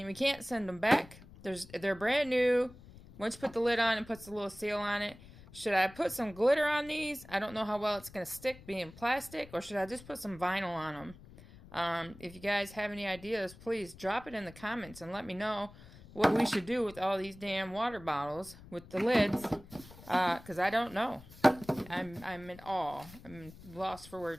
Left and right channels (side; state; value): left; noise; rumble, 19 dB below the sound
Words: we can't send them back. They're brand new. Once you put the lid on, it puts a little seal on it. Should I put some glitter on these? I don't know how well it's going to stick being plastic. Or should I just put some vinyl on them? If you guys have any ideas, please drop it in the comments and let me know what we should do with all these damn water bottles with the lids. Because I don't know. I'm in awe. I'm lost for